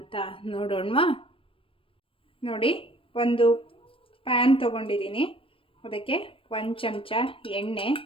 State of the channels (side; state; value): right; late; 0.26 ms